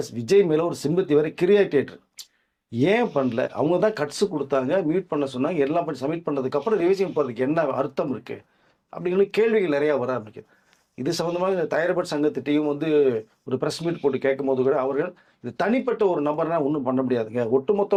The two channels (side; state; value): both; identical; correlation 1.00